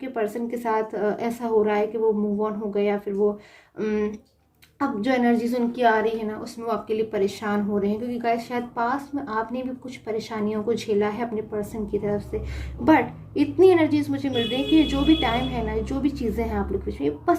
पर्सन के साथ ऐसा हो रहा है कि वो मूव ऑन हो गए या फिर वो अब जो एनर्जीज उनकी आ रही है ना उसमें वो आपके लिए परेशान हो रहे हैं। क्योंकि गाइस शायद पास में आपने भी कुछ परेशानियों को झेला है अपने पर्सन की तरफ से। बट इतनी एनर्जीज मुझे मिल रही है कि जो भी टाइम है ना, जो भी चीज़ें हैं आप लोग के बीच में,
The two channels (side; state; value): both; identical; correlation 1.00